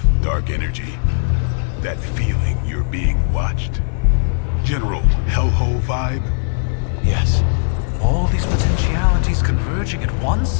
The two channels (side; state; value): right; silent; digital silence